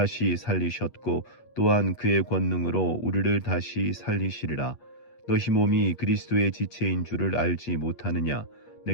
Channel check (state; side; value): late; right; 8.4 ms